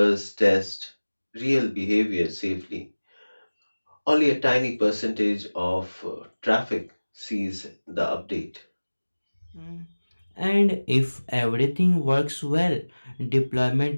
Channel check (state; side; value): inverted; both; correlation -1.00